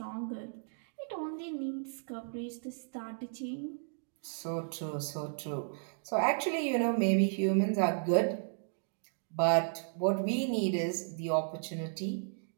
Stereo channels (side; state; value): left; silent; digital silence